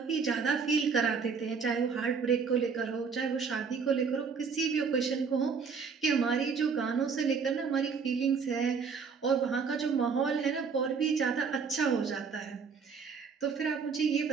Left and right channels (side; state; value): left; quieter; 5.6 dB